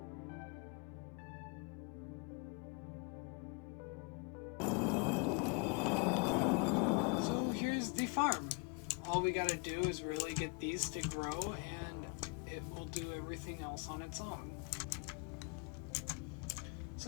Farm. All we gotta do is really get these to grow, and it will do everything else on its own.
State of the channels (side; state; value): right; quieter; 33.1 dB